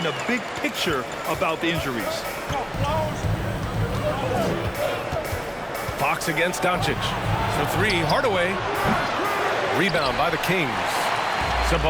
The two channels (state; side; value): identical; both; correlation 1.00